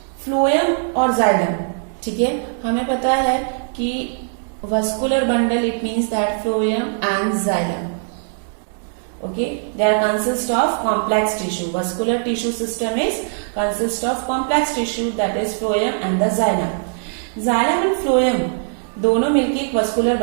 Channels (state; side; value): silent; left; digital silence